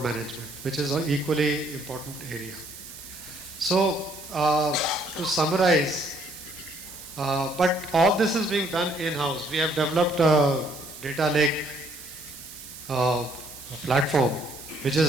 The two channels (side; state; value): right; noise; hiss, 14 dB below the sound